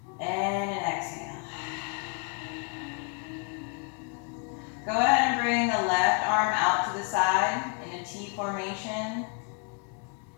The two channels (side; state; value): right; quieter; 37.6 dB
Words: And an exhale. Go ahead and bring the left arm out to the side in a T formation.